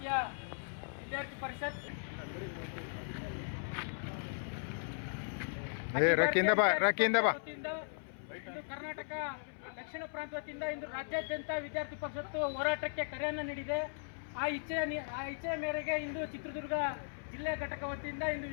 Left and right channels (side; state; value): right; silent; 53 dB below the other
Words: ವಿದ್ಯಾರ್ಥಿ ಪರಿಷತ್ ಇಂದು ಕರ್ನಾಟಕ ದಕ್ಷಿಣ ಪ್ರಾಂತ ವತಿಯಿಂದ ಇಂದು ರಾಜ್ಯಾದ್ಯಂತ ವಿದ್ಯಾರ್ಥಿ ಪರಿಷತ್ತು ಹೋರಾಟಕ್ಕೆ ಕರೆಯನ್ನು ನೀಡಿದೆ. ಆ ಇಚ್ಛೆಯ ಮೇರೆಗೆ ಇಂದು ಚಿತ್ರದುರ್ಗ ಜಿಲ್ಲೆ ಘಟಕ ವತಿಯಿಂದ ಇಂದು